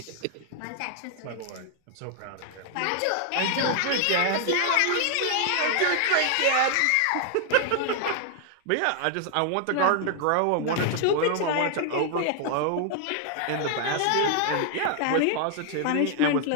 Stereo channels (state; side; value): different; both; correlation 0.00